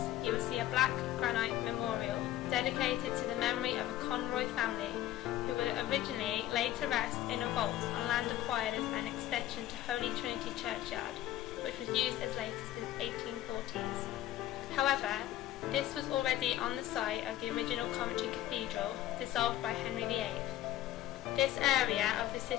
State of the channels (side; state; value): right; quieter; 13.6 dB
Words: you will see a black granite memorial dedicated to the memory of a Conroy family who would originally lay to rest in a vault on land acquired as an extension to Holy Trinity Churchyard, which was used as late as the 1840s. However, this was already on the site of the original Coventry Cathedral, dissolved by Henry VIII. This area of the